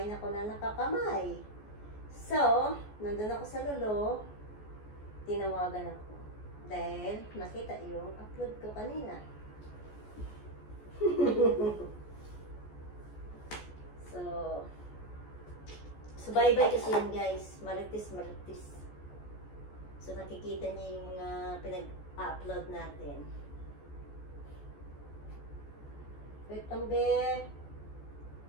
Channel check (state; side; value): late; right; 14 ms